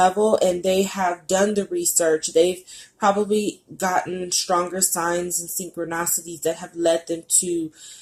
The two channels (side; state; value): both; identical; correlation 1.00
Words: and they have done the research. They've probably gotten stronger signs and synchronicities that have led them to